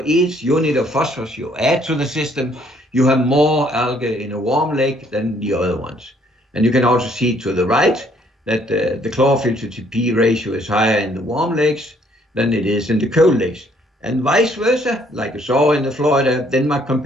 each unit of phosphorus you add to the system, you have more algae in a warm lake than the other ones. And you can also see to the right that the chlorophyll to TP ratio is higher in the warm lakes than it is in the cold lakes. And vice versa, like you saw in the Florida-Denmark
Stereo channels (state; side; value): normal; both; correlation 0.65